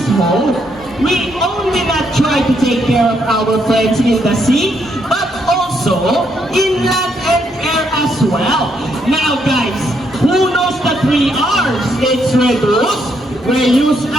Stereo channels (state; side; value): normal; both; correlation 0.75